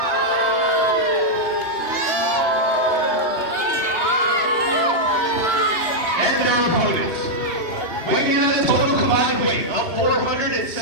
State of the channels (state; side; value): late; right; 2.8 ms